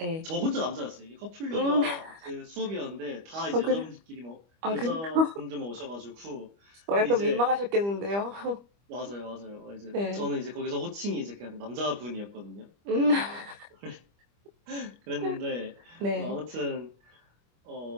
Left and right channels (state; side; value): late; left; 25 ms